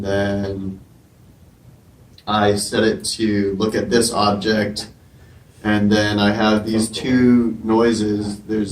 then I set it to look at this object, and then I have these two noises.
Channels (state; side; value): identical; both; correlation 1.00